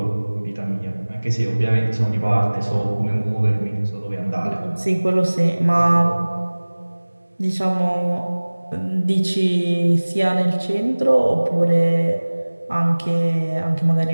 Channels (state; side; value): inverted; both; correlation -1.00